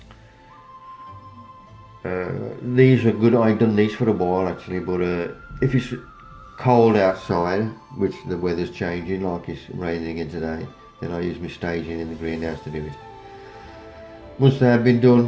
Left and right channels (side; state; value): both; identical; correlation 1.00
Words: These are good. I've done these for a while actually, but if it's cold outside, which the weather's changing, like it's raining again today, then I use my staging in the greenhouse to do it. Once they have been